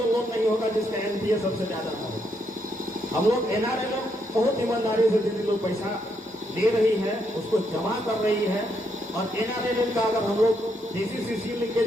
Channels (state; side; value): normal; both; correlation 0.77